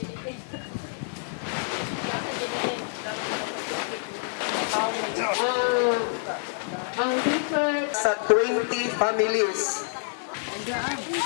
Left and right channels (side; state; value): right; silent; digital silence